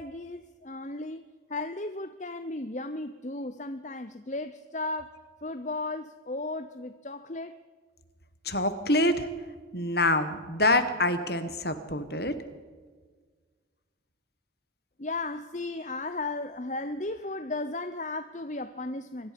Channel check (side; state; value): both; normal; correlation -0.02